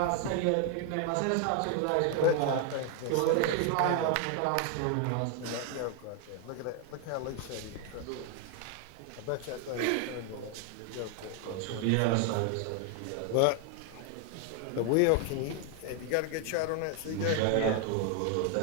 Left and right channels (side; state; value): both; different; correlation 0.00